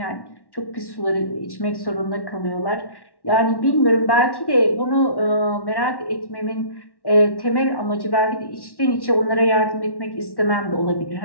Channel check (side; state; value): right; late; 1.1 ms